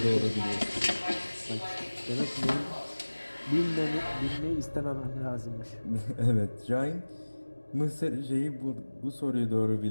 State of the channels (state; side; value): inverted; both; correlation -1.00